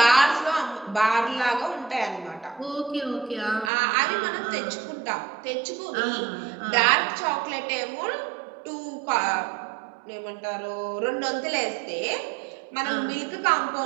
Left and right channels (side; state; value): left; drops out; at 3.7 s